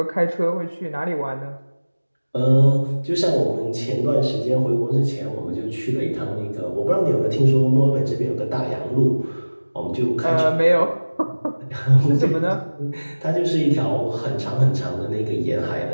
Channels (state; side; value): inverted; both; correlation -1.00